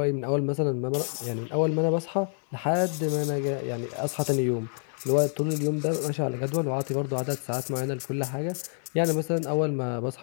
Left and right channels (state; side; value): silent; right; digital silence